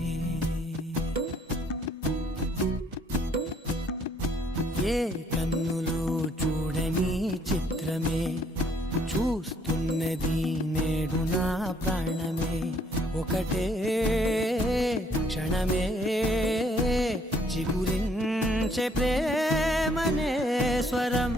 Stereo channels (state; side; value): normal; both; correlation 0.65